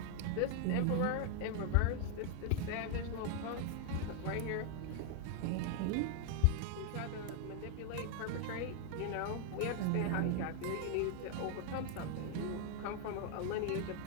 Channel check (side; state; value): both; different; correlation 0.00